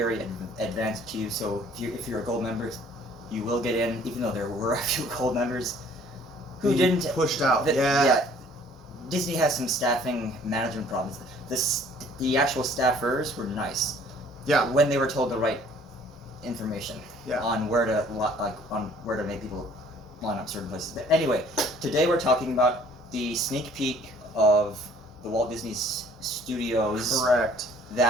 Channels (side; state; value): both; normal; correlation 0.56